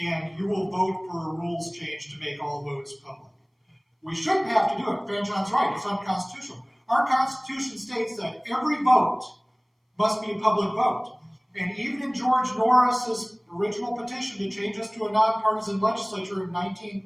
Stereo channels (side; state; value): both; identical; correlation 1.00